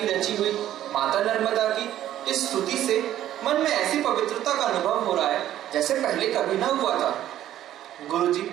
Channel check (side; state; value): left; quieter; 12.3 dB